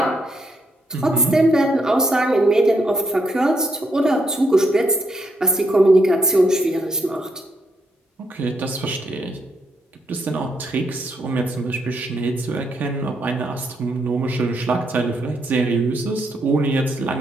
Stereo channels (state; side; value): normal; both; correlation 0.75